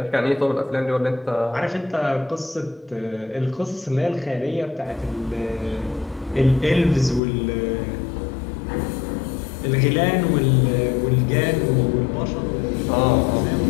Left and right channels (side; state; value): right; drops out; at 7.2 s